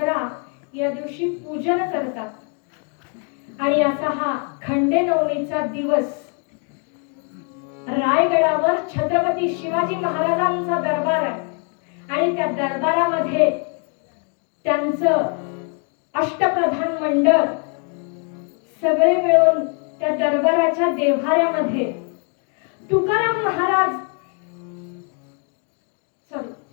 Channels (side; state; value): right; quieter; 38.9 dB